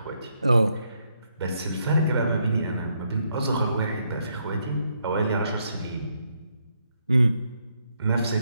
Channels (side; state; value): both; inverted; correlation -0.77